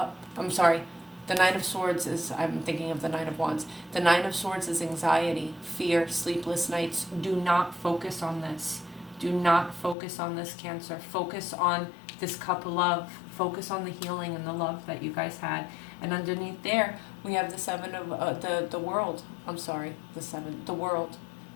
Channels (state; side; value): drops out; right; at 10.0 s